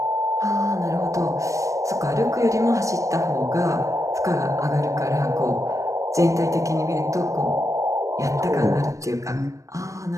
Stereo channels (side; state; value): left; late; 0.15 ms